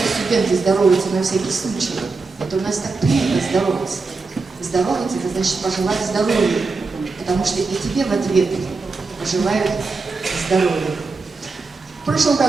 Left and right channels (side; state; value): left; quieter; 4.1 dB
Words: здороваются на всякий случай, это у нас так принято здороваться. Здороваться — это значит пожелать здоровья, потому что и тебе в ответ пожелают здоровья. В прошлом